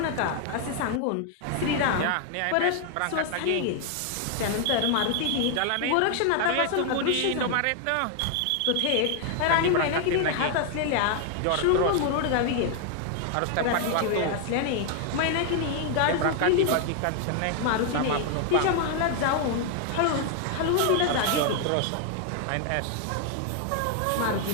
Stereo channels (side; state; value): both; different; correlation 0.00